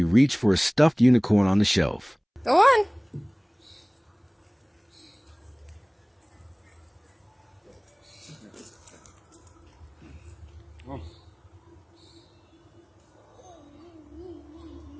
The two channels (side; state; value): both; identical; correlation 1.00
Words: reached for a stuffed unicorn on the shelf. Go on.